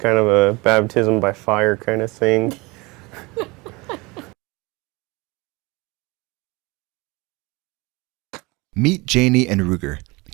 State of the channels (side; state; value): left; quieter; 24.8 dB